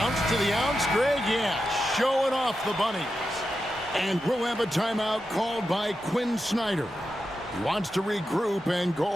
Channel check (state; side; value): normal; both; correlation 0.89